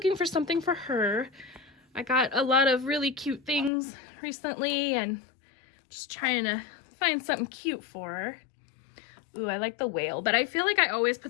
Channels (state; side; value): drops out; right; at 3.7 s